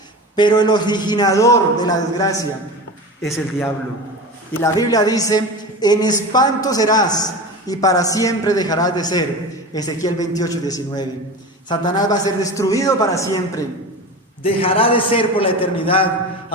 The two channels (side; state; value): both; normal; correlation 0.29